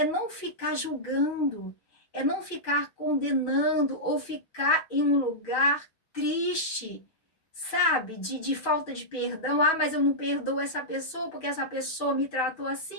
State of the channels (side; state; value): right; late; 6.2 ms